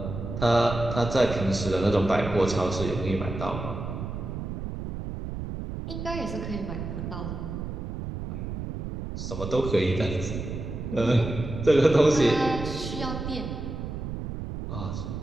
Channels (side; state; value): right; noise; rumble, 6 dB below the sound